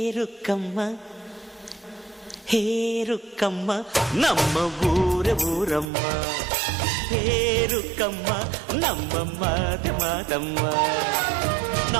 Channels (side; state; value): left; drops out; at 5.9 s